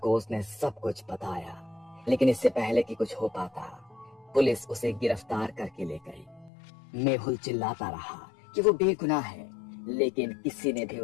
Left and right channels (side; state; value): right; drops out; at 6.5 s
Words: उसने सब कुछ बताया। लेकिन इससे पहले कि कुछ हो पाता, पुलिस उसे गिरफ्तार करके ले गई। मेहुल चिल्लाता रहा कि वो बेगुनाह है, लेकिन किसी ने भी